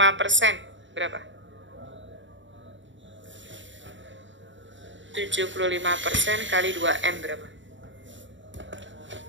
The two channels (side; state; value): left; late; 0.54 ms